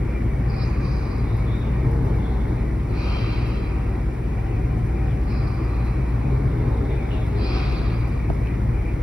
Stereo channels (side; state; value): both; normal; correlation 0.96